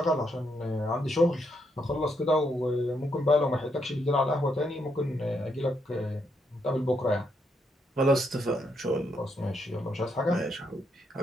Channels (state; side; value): normal; both; correlation 0.77